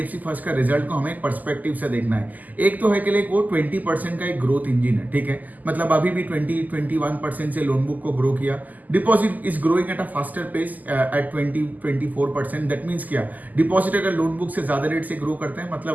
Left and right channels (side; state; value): left; late; 0.081 ms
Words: फर्स्ट का रिजल्ट को हमें एक पर्सपेक्टिव से देखना है। एक तो है कि लाइक वो 20% का एक ग्रोथ इंजन है, ठीक है। मतलब अभी भी 20-21% से लोन बुक को ग्रो किया। Deposit is growing at a faster pace at 20-24%। That means क्या, डिपॉजिट अगर लोन बुक से ज्यादा रेट से ग्रो करते हैं,